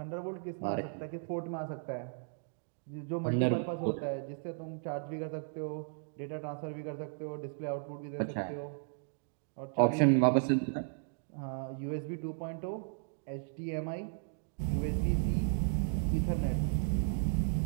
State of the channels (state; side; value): silent; left; digital silence